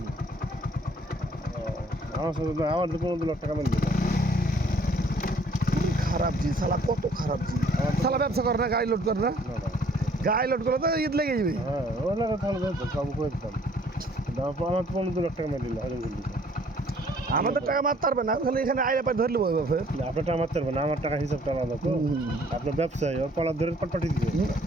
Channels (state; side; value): normal; both; correlation 0.60